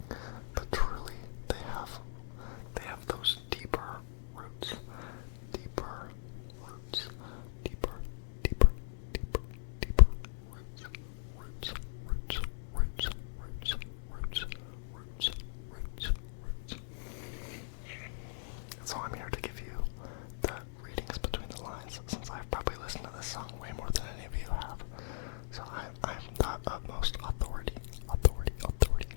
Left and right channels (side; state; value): right; silent; digital silence